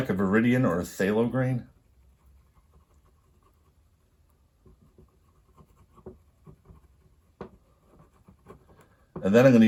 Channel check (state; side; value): identical; both; correlation 1.00